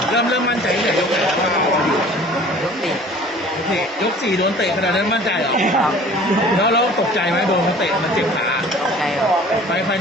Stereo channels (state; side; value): normal; both; correlation 0.48